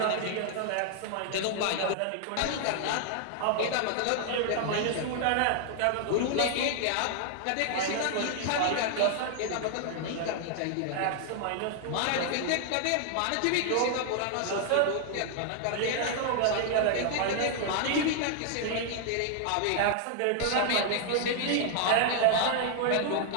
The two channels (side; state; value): both; different; correlation 0.00